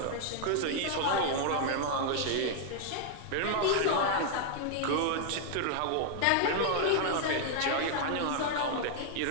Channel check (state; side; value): different; both; correlation 0.00